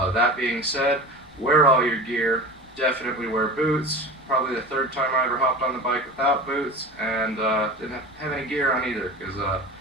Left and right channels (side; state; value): both; normal; correlation 0.33